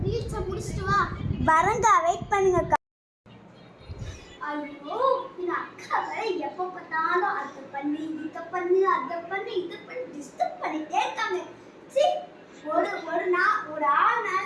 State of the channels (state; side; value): identical; both; correlation 1.00